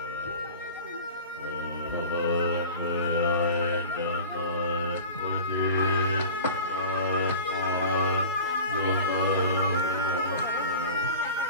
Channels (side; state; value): both; inverted; correlation -0.36